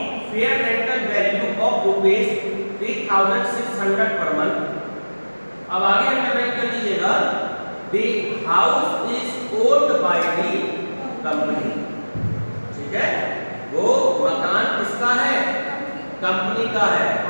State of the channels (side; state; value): both; inverted; correlation -1.00